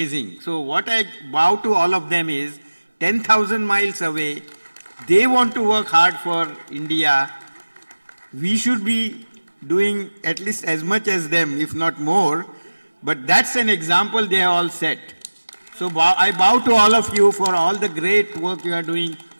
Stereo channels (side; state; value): both; inverted; correlation -1.00